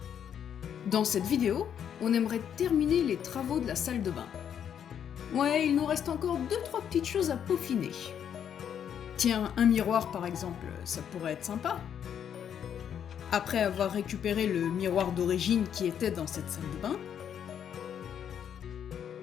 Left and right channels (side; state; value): right; quieter; 8.8 dB